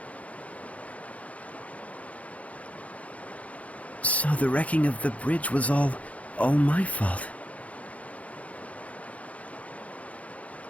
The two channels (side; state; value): right; late; 0.066 ms